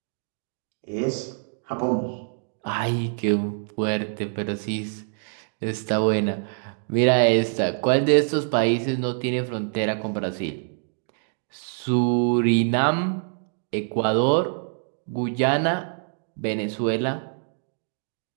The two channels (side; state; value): left; silent; digital silence